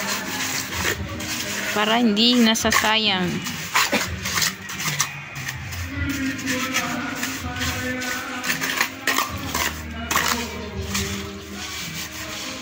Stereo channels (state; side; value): identical; both; correlation 1.00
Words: Para hindi nasasayang.